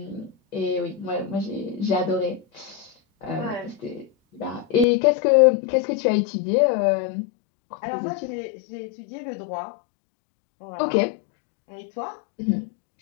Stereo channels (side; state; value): right; drops out; at 4.9 s